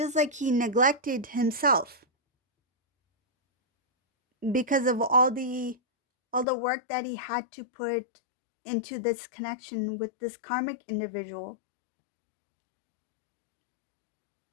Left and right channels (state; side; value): drops out; right; at 6.5 s